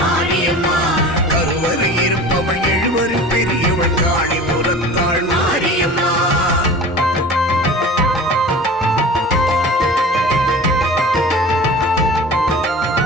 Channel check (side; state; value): both; normal; correlation 0.38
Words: கருவறை இருப்பவள் எழுவரில் பெரியவள் காணிபுரத்தாள் மாரியம்மா.